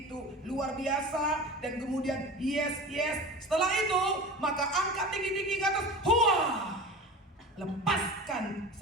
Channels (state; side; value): normal; both; correlation 0.34